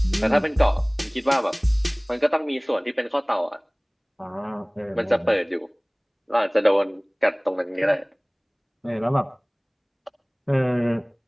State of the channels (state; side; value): identical; both; correlation 1.00